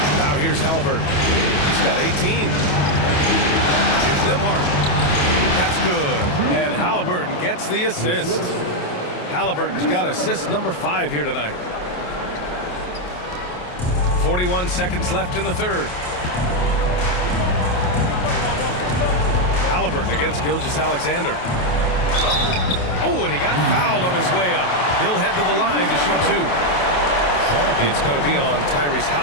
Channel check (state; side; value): late; right; 28 ms